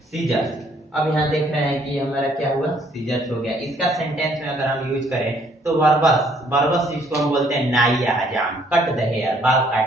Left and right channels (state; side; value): normal; both; correlation 0.64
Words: सीजर्स, अब यहाँ देख रहे हैं कि हमारा क्या हुआ, सीजर्स हो गया। इसका सेंटेंस में अगर हम यूज करें तो बर्बस, बर्बस जिसको हम बोलते हैं नाई या हजाम, कट द हेयर, बाल